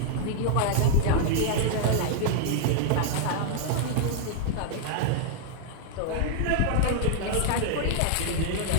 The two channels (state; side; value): different; both; correlation -0.01